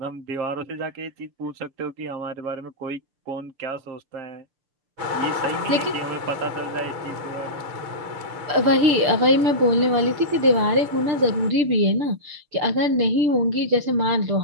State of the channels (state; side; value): late; left; 6.7 ms